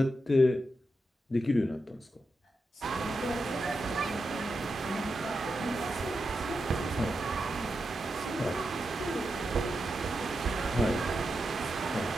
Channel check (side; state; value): both; normal; correlation 0.87